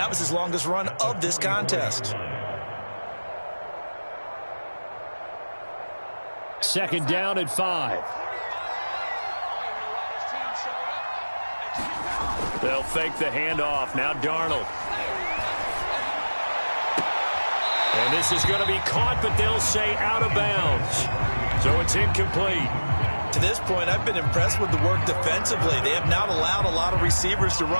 was his longest run of this contest. 2nd down and 5. They'll fake the handoff. Now Darnold. And this is going to be caught, but they'll say out of bounds. So it's incomplete. To this point, I've been impressed with the work defensively. They have not allowed a lot of receivers to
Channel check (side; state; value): both; inverted; correlation -1.00